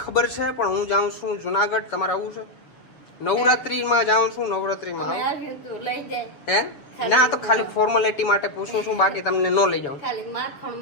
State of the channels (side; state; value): right; late; 7.0 ms